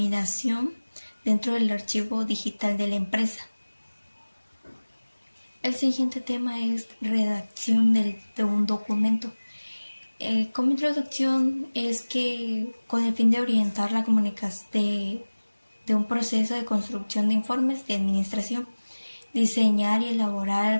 dentro del archivo digital de la empresa. El siguiente tema es redacción de un documento. Como introducción es que con el fin de orientar la comunicación de un proceso de construcción de informes de administración, diseñar y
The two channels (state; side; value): inverted; both; correlation -1.00